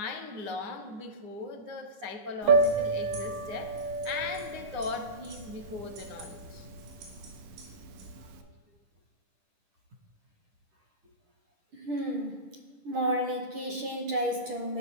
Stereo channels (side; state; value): left; late; 10 ms